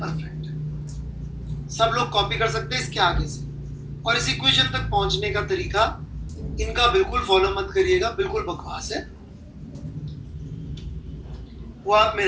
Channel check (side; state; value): both; identical; correlation 1.00